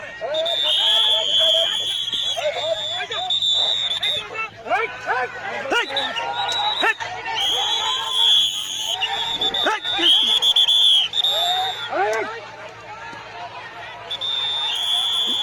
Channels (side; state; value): both; identical; correlation 1.00